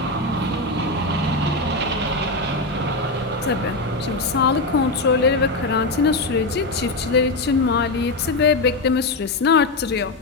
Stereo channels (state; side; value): quieter; right; 3.0 dB